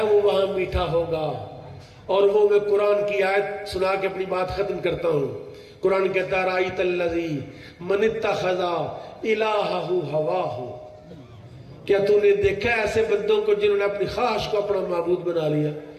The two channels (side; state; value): both; identical; correlation 1.00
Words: وہ وہاں میٹھا ہوگا اور وہ میں قرآن کی آیت سنا کے اپنی بات ختم کرتا ہوں قرآن کہتا ہے رأیت الذی من اتخذ الہہ ہواہ کیا تو نے دیکھا ایسے بندوں کو جنہوں نے اپنی خواہش کو اپنا معبود بنا لیا